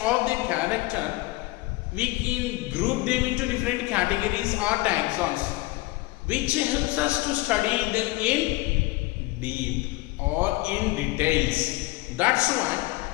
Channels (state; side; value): quieter; right; 20.5 dB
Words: the character, we can group them into different categories or taxons, which helps us to study them in deep or in details. That's